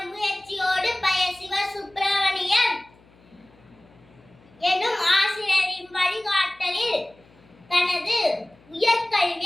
முயற்சியோடு பய சிவசுப்பிரமணியன் எனும் ஆசிரியரின் வழிகாட்டலில் தனது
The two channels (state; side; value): noise; left; hum, 28 dB below the sound